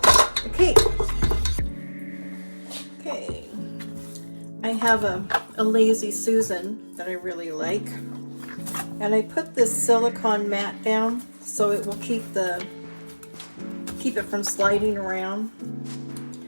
the cake. Okay, I have a Lazy Susan that I really like, and I put this silicone mat down so it will keep it from sliding around.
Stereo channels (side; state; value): both; inverted; correlation -1.00